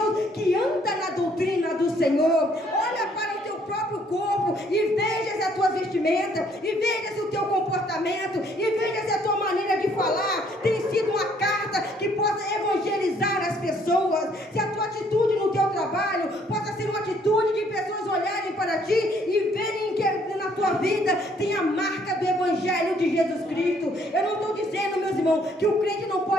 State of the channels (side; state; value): both; normal; correlation 0.64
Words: que anda na doutrina do Senhor. Olha para o teu próprio corpo e veja se a tua vestimenta, e veja se o teu comportamento, e veja se a tua maneira de falar tem sido uma carta que possa evangelizar as pessoas. Se a tua atitude no teu trabalho possa ser uma atitude de pessoas olharem para ti e verem que na tua vida tem a marca do Evangelho de Jesus Cristo. Eu não estou dizendo, meus irmãos, que o crente não